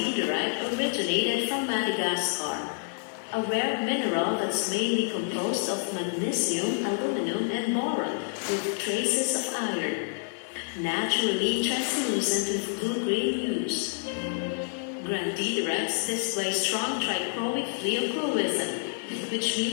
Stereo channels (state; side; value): silent; right; digital silence